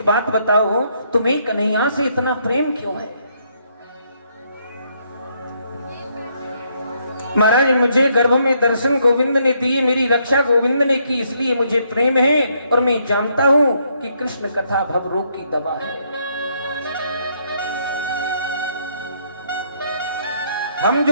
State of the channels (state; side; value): inverted; both; correlation -0.72